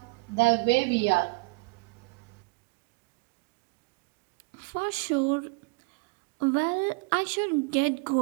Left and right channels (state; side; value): quieter; left; 27.8 dB